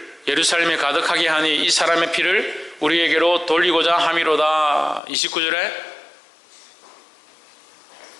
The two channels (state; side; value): drops out; right; at 5.0 s